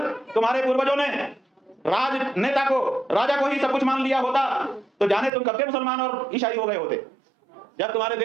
तुम्हारे पूर्वजों ने राजनेता को, राजा को ही सब कुछ मान लिया होता तो जाने तुम कब के मुसलमान और ईसाई हो गए होते। जब तुम्हारे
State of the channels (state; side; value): drops out; left; at 5.3 s